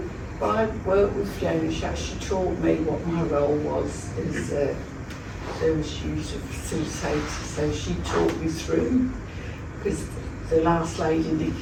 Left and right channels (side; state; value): both; identical; correlation 1.00